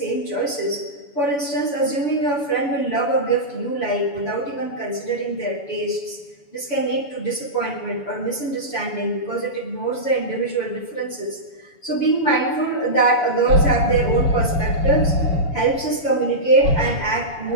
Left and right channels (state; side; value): late; right; 7.0 ms